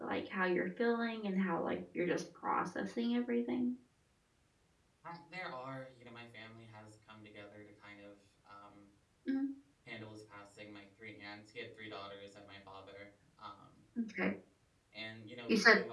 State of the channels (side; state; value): both; identical; correlation 1.00